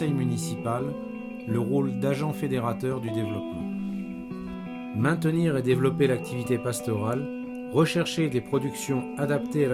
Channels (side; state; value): both; identical; correlation 1.00